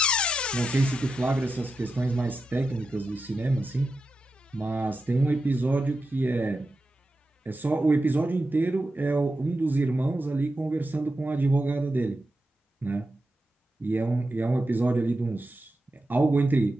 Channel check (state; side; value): normal; both; correlation 0.89